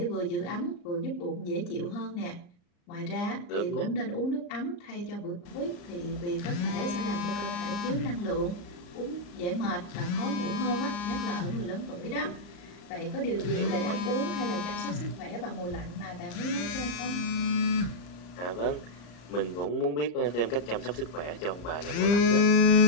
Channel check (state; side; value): late; right; 34 ms